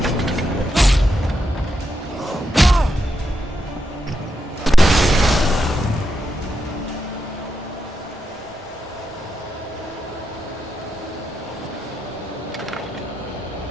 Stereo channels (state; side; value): normal; both; correlation 0.84